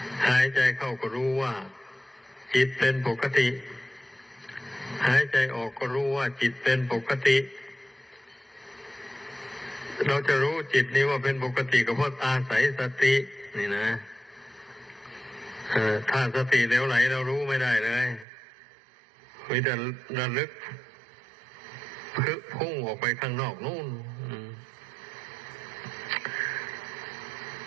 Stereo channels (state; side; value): drops out; left; at 18.2 s